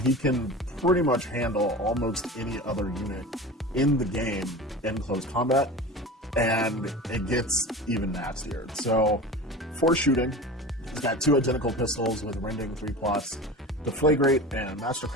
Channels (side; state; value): both; normal; correlation 0.33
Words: can pretty much handle almost any other unit in the game in close combat, and it gets even nastier. So for shooting, he's got 2 identical pistols with Rending 3+, Deflagrate and